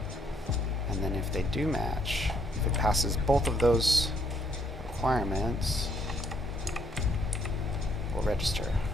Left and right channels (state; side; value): normal; both; correlation 0.69